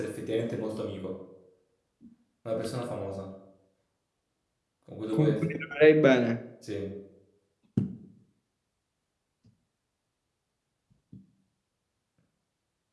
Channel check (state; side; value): identical; both; correlation 1.00